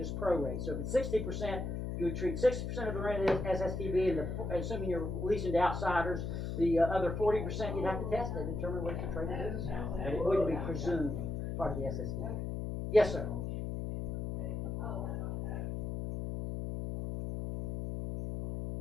prorate. So if it's 60%, you would treat 60% of the rent as SSTB, and assuming you're leasing to outsiders, the other 40% you'd have to test to determine whether it's a trade or business. But it wouldn't be presumed part of the SSTB. Yes, sir.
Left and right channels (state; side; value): noise; left; hum, 3 dB below the sound